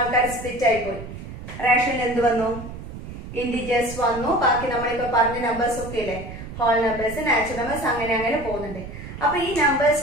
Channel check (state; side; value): noise; right; rumble, 11 dB below the sound